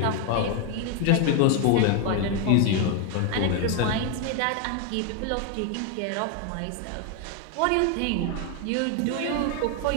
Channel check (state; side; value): different; both; correlation 0.01